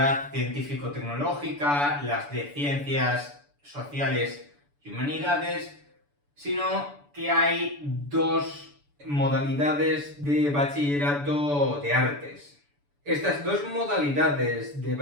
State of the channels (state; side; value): late; left; 6.9 ms